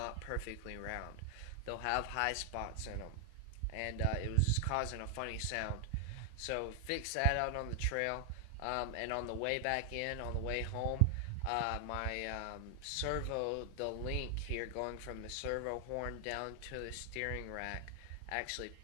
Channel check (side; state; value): both; different; correlation 0.00